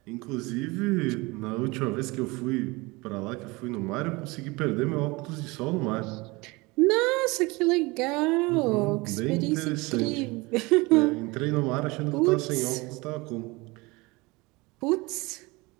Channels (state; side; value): quieter; left; 24.0 dB